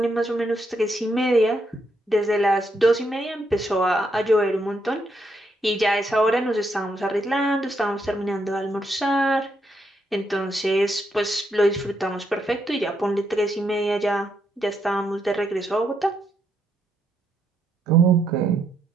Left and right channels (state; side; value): normal; both; correlation 0.78